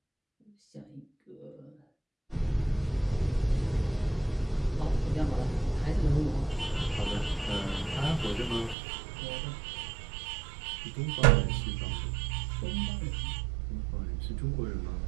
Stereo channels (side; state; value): left; drops out; at 8.8 s